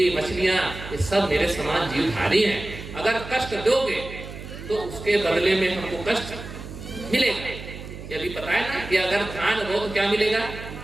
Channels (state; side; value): noise; right; hum, 12 dB below the sound